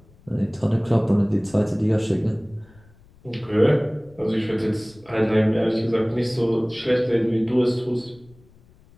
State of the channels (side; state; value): left; noise; rumble, 27 dB below the sound